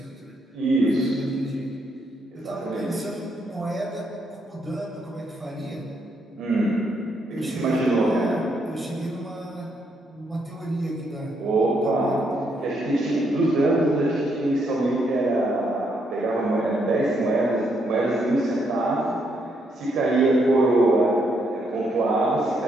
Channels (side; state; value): both; normal; correlation 0.75